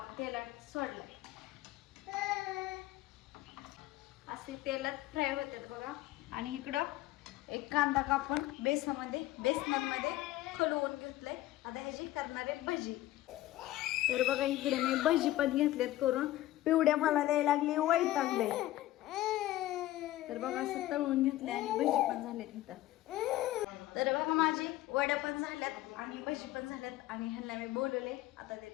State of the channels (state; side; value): quieter; right; 15.6 dB